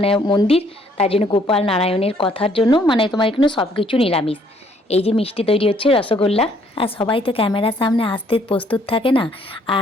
মন্দির, তার জন্য গোপাল নারায়ণের কথার জন্য মানে তোমার এখানে সব কিছু নিরামিষ। এই যে মিষ্টি তৈরি হচ্ছে রসগোল্লা, আর সবাই তো ক্যামেরার সামনে আসতে প্রস্তুত থাকে না, আর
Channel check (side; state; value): both; normal; correlation 0.65